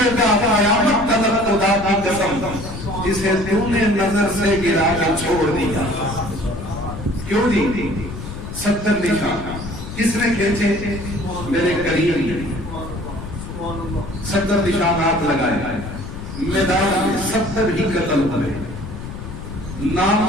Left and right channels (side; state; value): left; noise; rumble, 10 dB below the sound